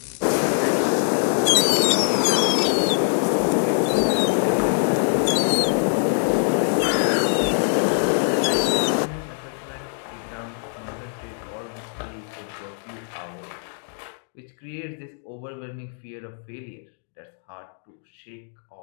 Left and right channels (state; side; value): silent; right; digital silence